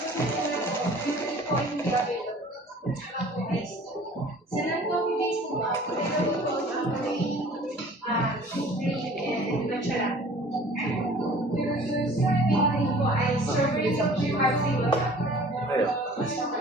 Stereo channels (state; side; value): normal; both; correlation 0.48